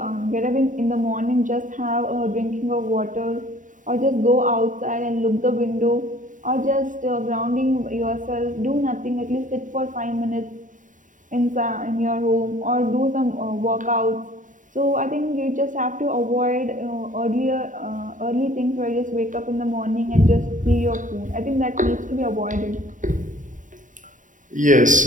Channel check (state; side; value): late; left; 0.37 ms